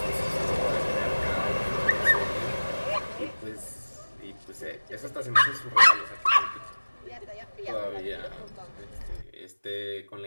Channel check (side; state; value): both; inverted; correlation -1.00